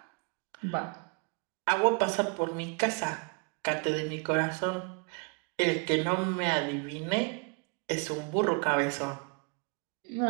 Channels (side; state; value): left; quieter; 35.6 dB